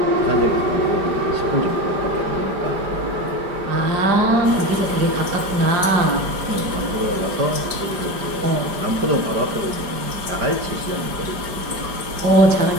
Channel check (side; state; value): left; late; 5.0 ms